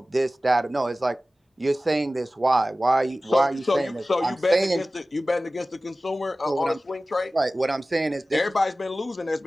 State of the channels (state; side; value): normal; both; correlation 0.96